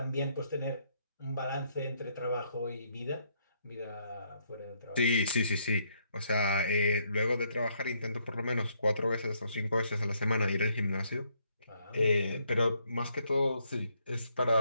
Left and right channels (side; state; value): both; inverted; correlation -0.72